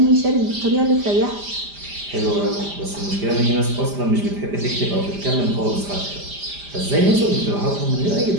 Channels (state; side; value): late; left; 5.0 ms